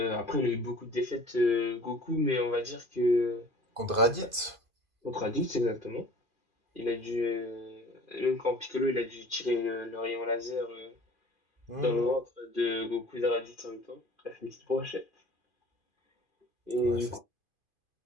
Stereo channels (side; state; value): left; late; 2.5 ms